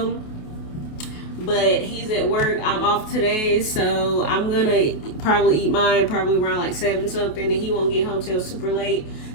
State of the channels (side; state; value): right; late; 28 ms